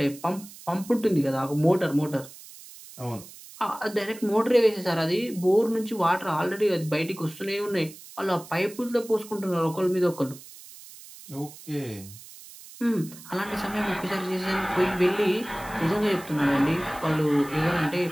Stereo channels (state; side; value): noise; right; hiss, 18 dB below the sound